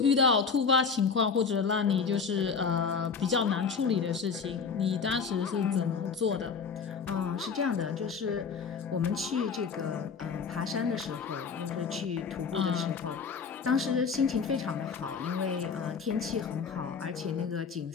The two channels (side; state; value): right; quieter; 5.7 dB